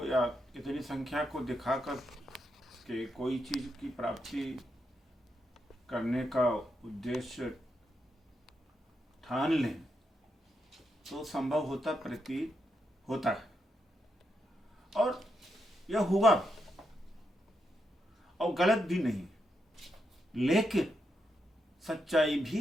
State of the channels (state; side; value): normal; both; correlation 0.83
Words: या इतनी संख्या को दिखाकर के कोई चीज़ की प्राप्ति करने का उद्देश्य ठान लें तो संभव होता प्रतीत होता है, और यह हुआ और गलत भी नहीं। लेकिन सच्चाई